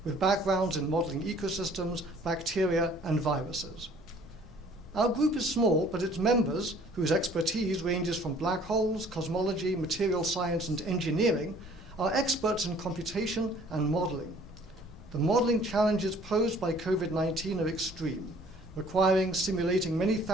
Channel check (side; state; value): both; normal; correlation 0.55